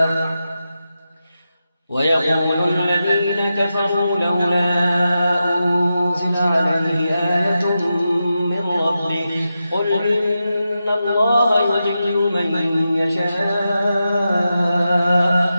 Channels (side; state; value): both; inverted; correlation -0.90